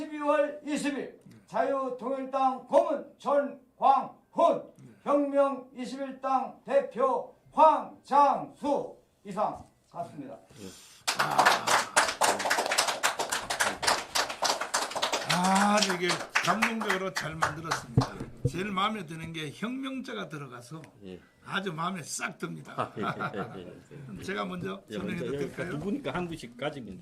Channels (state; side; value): identical; both; correlation 1.00